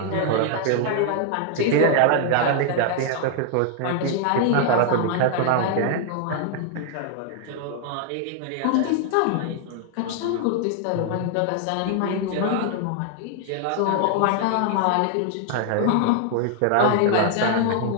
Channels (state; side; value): different; both; correlation 0.00